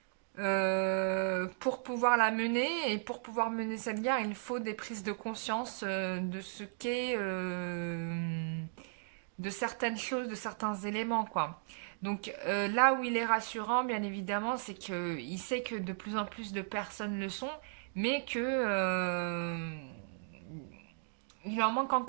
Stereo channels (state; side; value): silent; left; digital silence